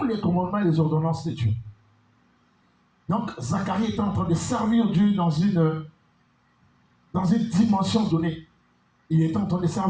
les commandements et les ordonnances de Dieu. Donc, Zacharie était en train de servir Dieu dans une dimension donnée. Il était en train de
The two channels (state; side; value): identical; both; correlation 1.00